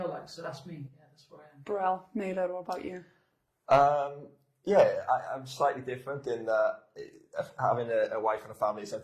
like. So that's me. Yeah, that's where I am. Brill, Meiz, what about you? I'm slightly different in that having a wife and a family is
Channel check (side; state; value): both; identical; correlation 1.00